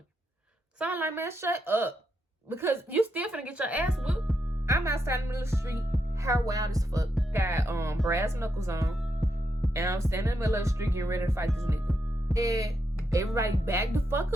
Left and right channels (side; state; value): both; normal; correlation 0.82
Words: So I'm like, man, shut up. Because you still finna get your ass whooped. I'm outside in the middle of the street, hair wild as fuck. Got brass knuckles on. And I'm standing in the middle of the street getting ready to fight this nigga. And everybody back the fuck